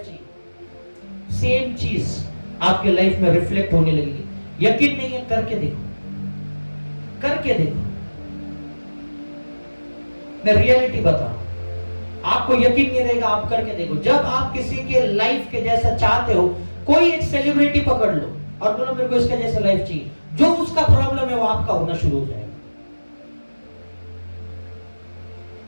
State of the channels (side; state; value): both; inverted; correlation -1.00